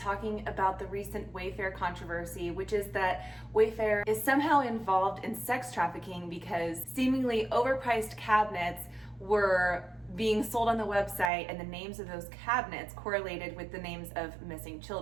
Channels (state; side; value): drops out; left; at 11.3 s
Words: about the recent Wayfair controversy, which is that Wayfair is somehow involved in sex trafficking because seemingly overpriced cabinets were being sold on the website and the names of those cabinets correlated with the names of missing